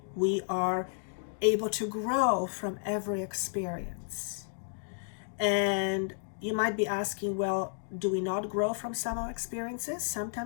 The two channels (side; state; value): right; silent; digital silence